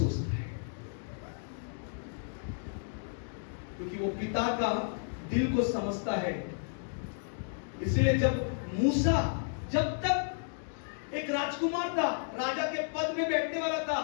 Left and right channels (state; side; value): silent; right; digital silence